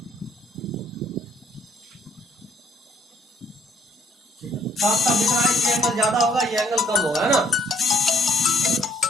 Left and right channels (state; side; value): normal; both; correlation 0.66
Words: साफ साफ दिख रहा है कि एंगल ज्यादा होगा, ये एंगल कम होगा, है ना।